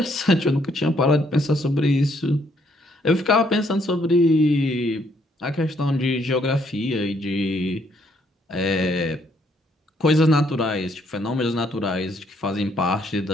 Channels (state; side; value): normal; both; correlation 0.70